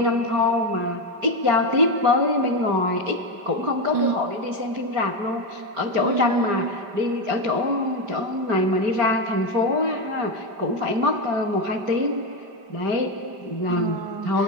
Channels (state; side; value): late; left; 5.1 ms